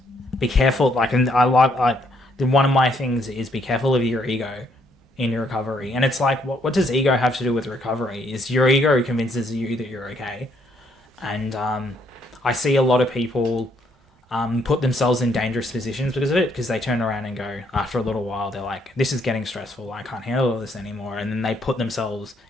be careful, like, and I like one of my things is be careful of your ego in your recovery. And it's like, what does ego have to do with recovery? Is your ego convinces you that you're okay? And I see a lot of people put themselves in dangerous positions because of it, because they turn around and go, after a little while, they're like, this is getting stressful, I can't handle this anymore. And then they put themselves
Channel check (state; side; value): normal; both; correlation 0.70